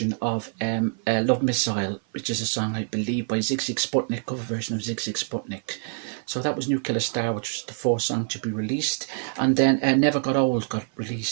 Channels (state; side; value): silent; left; 56 dB below the other